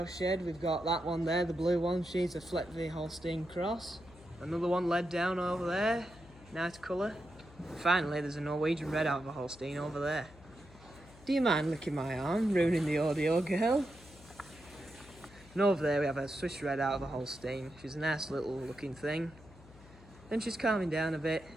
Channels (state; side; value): noise; left; hum, 22 dB below the sound